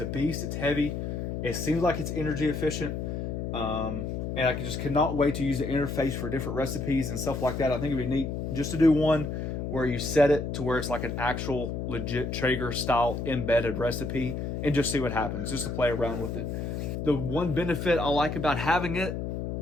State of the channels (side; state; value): left; noise; hum, 3 dB below the sound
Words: beast. It's heavy. It seems like it's energy efficient. And I just cannot wait to use the interface for different recipes and stuff like that. I think it'd be neat just to do one where you set it to where it's like an actual legit Traeger style embedded recipe and just see what happens, just to play around with it. The one benefit I like about having it